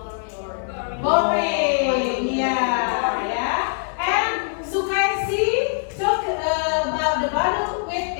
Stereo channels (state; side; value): silent; right; digital silence